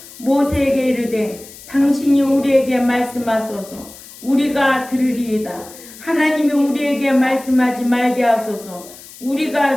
모세에게 이르되 당신이 우리에게 말씀하소서 우리가 들으리이다. 하나님이 우리에게 말씀하지 말게 하소서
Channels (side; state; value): left; noise; hiss, 18 dB below the sound